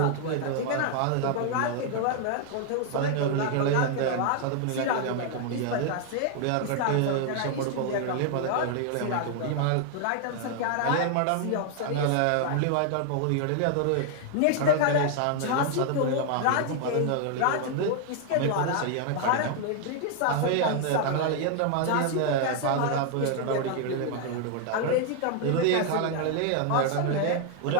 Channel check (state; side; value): different; both; correlation 0.00